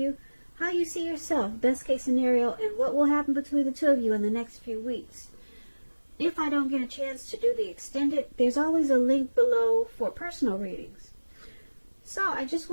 how you see yourself, best case scenario, and what will happen between the two of you in the next few weeks. If I don't get a chance to do the extended, there's always a link below for personal readings. So I just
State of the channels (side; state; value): both; inverted; correlation -1.00